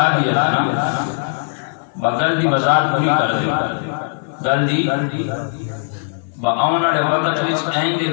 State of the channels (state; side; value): silent; right; digital silence